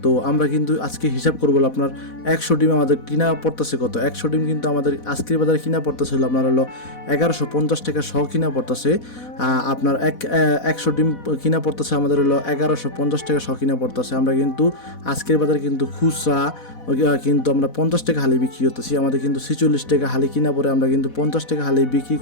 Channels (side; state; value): right; late; 4.1 ms